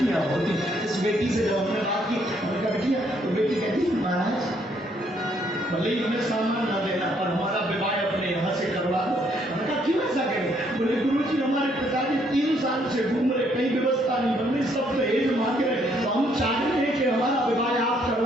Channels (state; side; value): normal; both; correlation 0.69